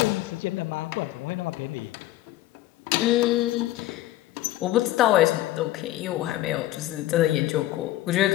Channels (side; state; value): right; quieter; 15.5 dB